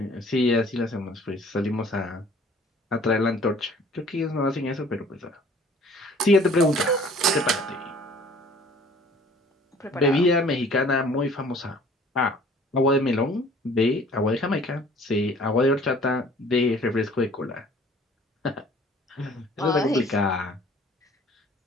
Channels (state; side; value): normal; both; correlation 0.52